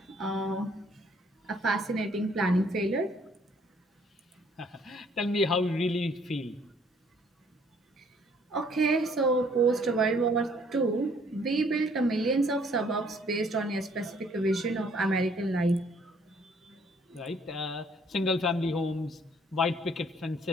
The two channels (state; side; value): normal; both; correlation 0.62